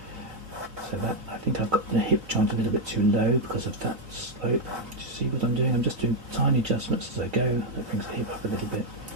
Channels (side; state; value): left; late; 3.9 ms